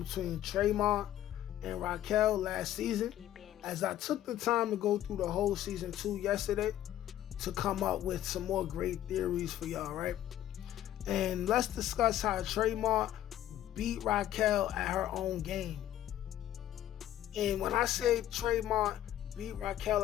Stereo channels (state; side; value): quieter; right; 12.4 dB